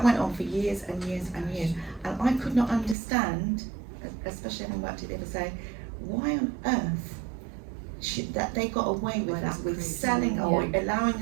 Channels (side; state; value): left; drops out; at 3.0 s